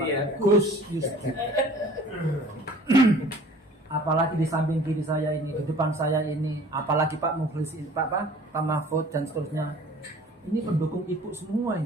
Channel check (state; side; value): normal; both; correlation 0.48